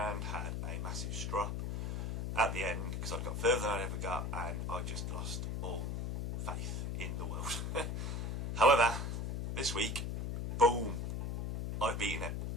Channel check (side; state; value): left; noise; hum, 2 dB below the sound